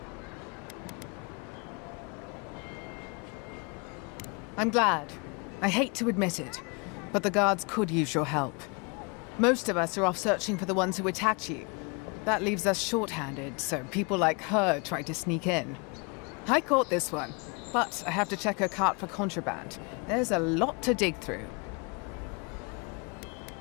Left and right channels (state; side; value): quieter; right; 31.8 dB